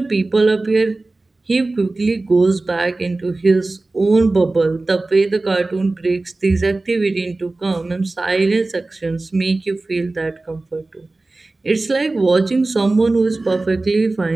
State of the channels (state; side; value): quieter; left; 3.2 dB